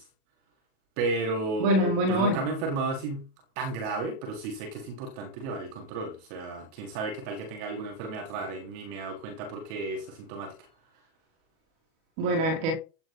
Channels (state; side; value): late; left; 37 ms